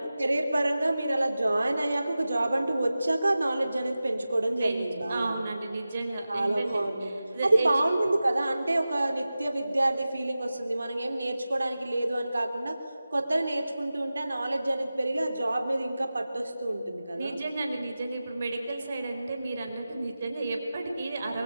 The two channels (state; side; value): inverted; both; correlation -0.95